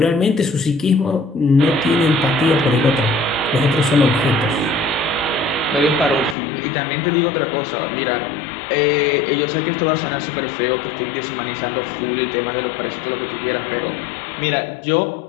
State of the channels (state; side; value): drops out; right; at 6.4 s